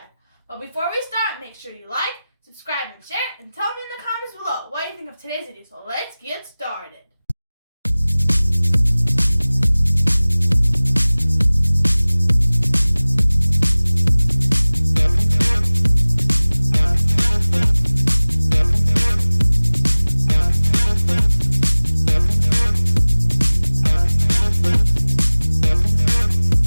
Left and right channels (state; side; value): inverted; both; correlation -0.99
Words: But before we start, make sure you like, subscribe, and share, and tell me in the comments below what you think of today's video. So let's get started.